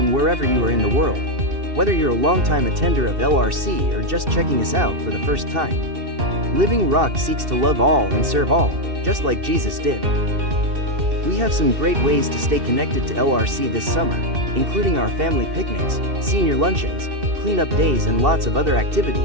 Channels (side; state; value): left; late; 2.6 ms